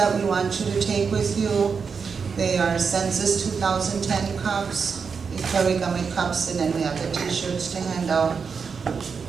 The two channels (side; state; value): left; quieter; 5.7 dB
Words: we want you to take with you. They are Census 2010 cups, Equay Wiigamig cups, and then we have the t-shirts to hand out.